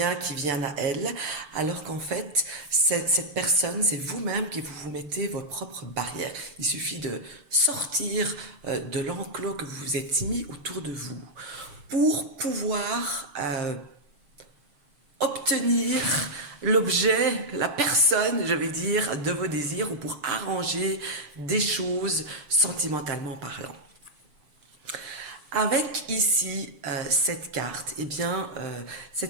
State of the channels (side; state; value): left; late; 6.8 ms